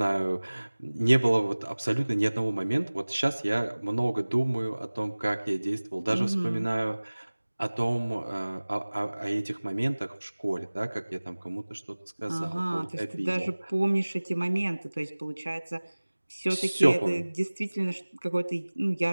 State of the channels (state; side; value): inverted; both; correlation -1.00